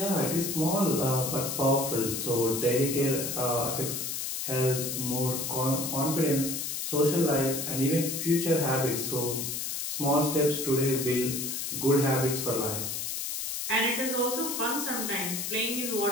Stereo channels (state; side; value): noise; left; hiss, 3 dB below the sound